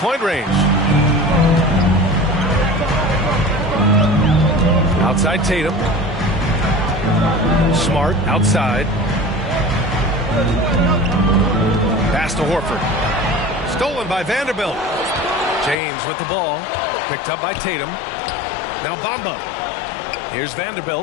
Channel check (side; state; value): right; drops out; at 15.8 s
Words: range. Outside Tatum. Smart outside. Pass to Horford. Stolen by Vanderbilt. James with the ball. Picked up by Tatum. Now Bamba. Here's